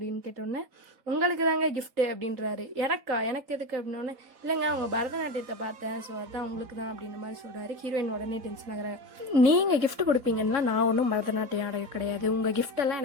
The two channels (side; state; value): left; late; 3.9 ms